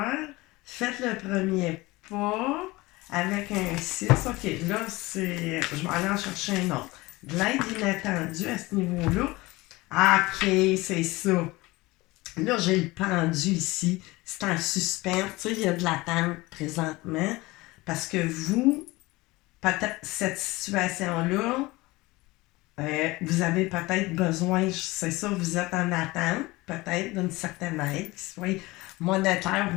Faites le premier pas avec un 6. OK, là, c'est. Je vais aller en chercher un autre. De l'aide inattendue à ce niveau-là. Ah, OK, c'est ça. Là, j'ai le pendu ici. C'est en suspens. Tu sais, il y a de l'attente présentement. Parce que vous, peut-être cette situation-là, vous avez peut-être besoin, c'est ça, vous êtes en attente, peut-être, d'une certaine aide, qui soit monétaire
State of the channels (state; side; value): quieter; right; 21.3 dB